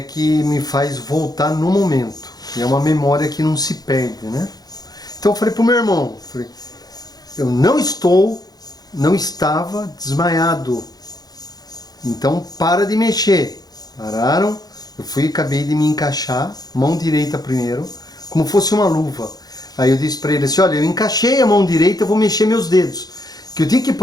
me faz voltar no momento. E é uma memória que não se perde, né? Então eu falei pro meu irmão, eu não estava desmaiado. Então para de mexer. Pararam, eu acabei de me encaixar, mão direita primeiro, como fosse uma luva. Aí eu disse para ele assim, olha, eu encaixei a mão direita, eu vou mexer meus dedos. Que eu tinha que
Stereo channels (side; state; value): right; late; 0.19 ms